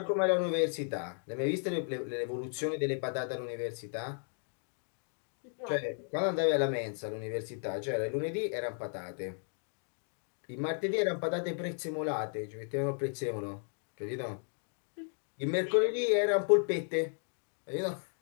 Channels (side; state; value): right; silent; 55 dB below the other